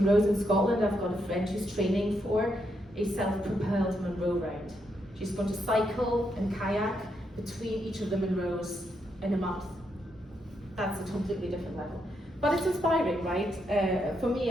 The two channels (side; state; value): both; normal; correlation 0.79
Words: in Scotland. I've got a friend who's training for a self-propelled Munro round. She's going to cycle and kayak between each of the Munros in a month. That's a completely different level. But it's inspiring, right? For me